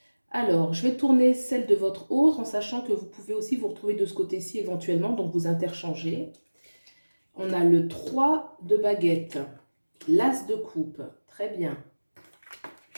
Alors, je vais tourner celle de votre autre en sachant que vous pouvez aussi vous retrouver de ce côté-ci éventuellement, donc vous interchangez. On a le 3 de baguette, l'as de coupe, très bien.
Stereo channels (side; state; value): both; inverted; correlation -1.00